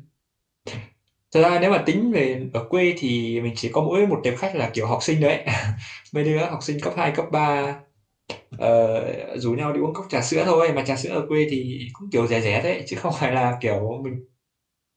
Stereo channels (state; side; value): identical; both; correlation 1.00